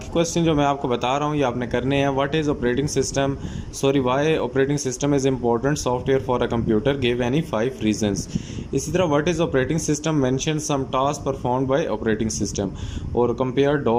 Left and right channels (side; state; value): both; identical; correlation 1.00